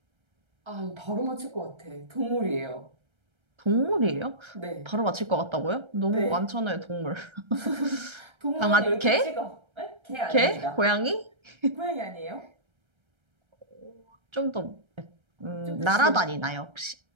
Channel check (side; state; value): left; late; 1.3 ms